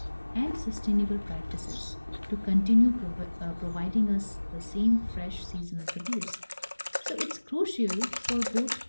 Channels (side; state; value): both; inverted; correlation -1.00